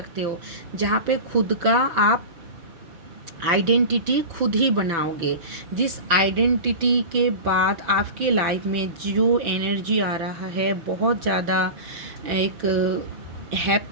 हो। जहाँ पे खुद का आप आइडेंटिटी खुद ही बनाओगे। जिस आइडेंटिटी के बाद आपके लाइफ में जो एनर्जी आ रहा है, बहुत ज़्यादा एक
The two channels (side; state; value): left; late; 6.0 ms